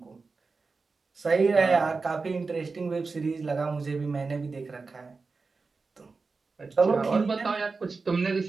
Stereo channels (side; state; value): left; quieter; 4.2 dB